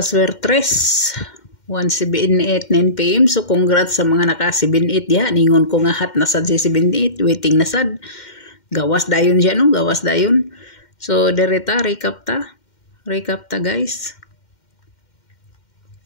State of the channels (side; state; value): right; late; 2.1 ms